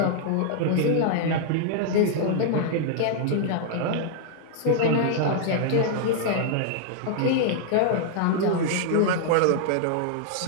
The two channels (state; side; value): different; both; correlation -0.01